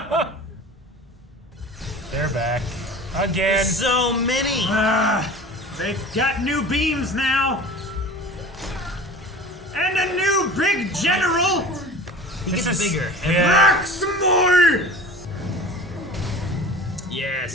They're back. Again. So many! They've got new beams now! And a new big general! He gets bigger. Max more!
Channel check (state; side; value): normal; both; correlation 0.39